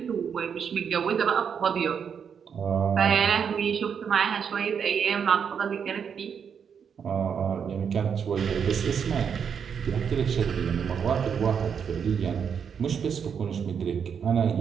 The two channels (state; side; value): quieter; left; 7.1 dB